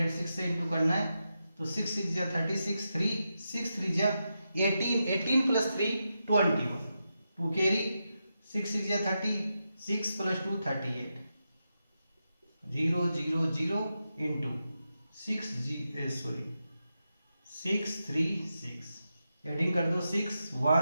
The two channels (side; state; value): both; inverted; correlation -0.88